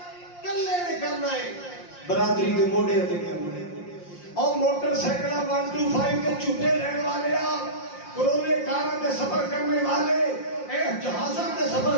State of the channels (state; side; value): late; right; 5.7 ms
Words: کلے نے کرنا ہے، برادری کے موڈے تے کرنا ہے. اور موٹر سائیکل 125 کے جھوٹے لینے والے، کروڑے کاراں تے سفر کرنے والے، جہازاں تے سفر